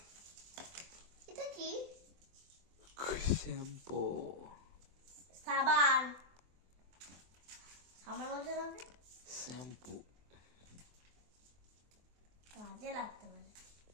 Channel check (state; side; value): late; left; 23 ms